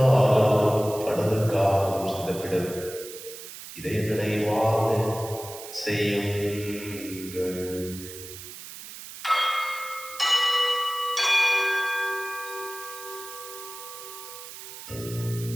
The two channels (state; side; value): noise; right; hiss, 13 dB below the sound